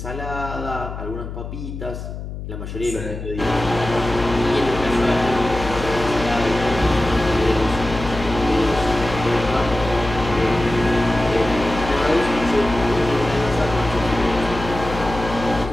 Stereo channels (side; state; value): left; noise; hum, 8 dB below the sound